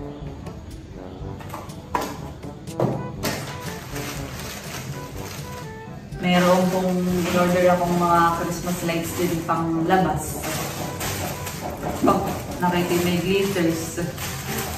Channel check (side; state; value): both; identical; correlation 1.00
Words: Meron pong in-order akong mga Christmas lights din pang labas. Oh, nakita may glitters.